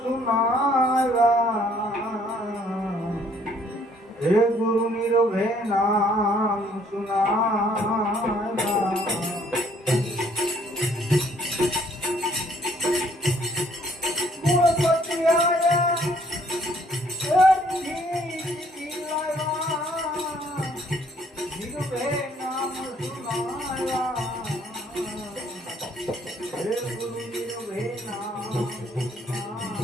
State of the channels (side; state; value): both; normal; correlation 0.63